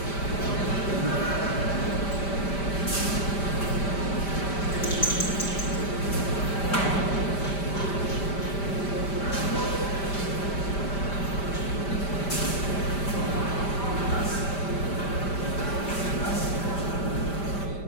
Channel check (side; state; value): right; late; 5.1 ms